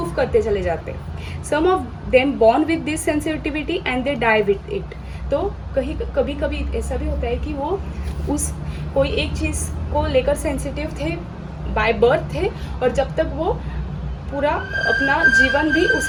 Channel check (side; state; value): both; identical; correlation 1.00